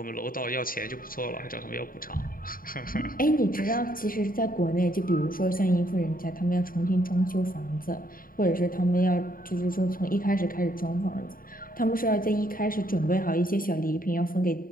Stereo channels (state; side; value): late; right; 0.41 ms